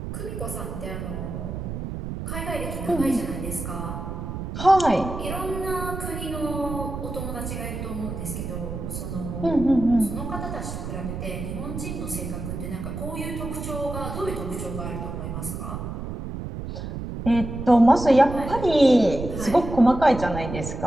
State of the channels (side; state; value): right; noise; rumble, 6 dB below the sound